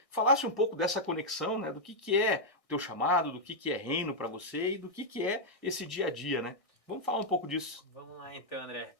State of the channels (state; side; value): late; right; 1.6 ms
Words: falasse um pouco dessa conexão, do que é o teu chamado, do que é reino para você e do que é esse dia a dia, né? Vamos falar um pouco disso. Vamos lá então, André.